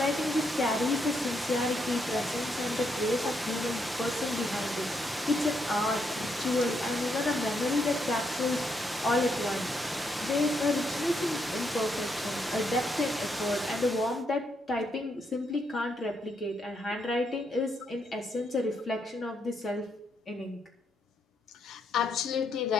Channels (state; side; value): normal; both; correlation 0.77